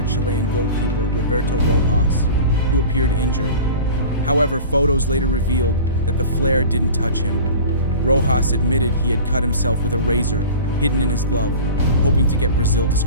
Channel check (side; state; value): both; inverted; correlation -0.37